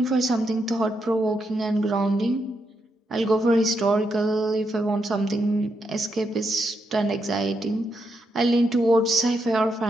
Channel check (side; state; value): both; normal; correlation 0.81